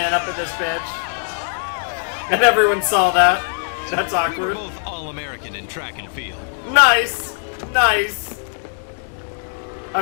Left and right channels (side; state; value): right; silent; digital silence